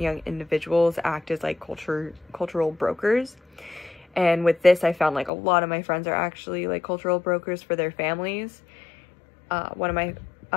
young individuals act as cultural brokers. And with this, I found a lot of my friends are actually cultural brokers for their families. One of my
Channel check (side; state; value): right; drops out; at 5.3 s